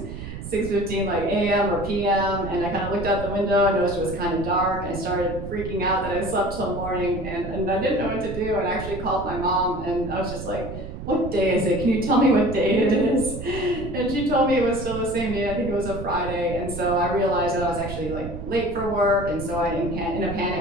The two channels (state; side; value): noise; right; rumble, 9 dB below the sound